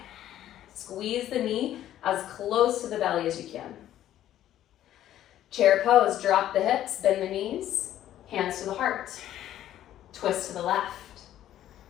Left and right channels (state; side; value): quieter; right; 12.2 dB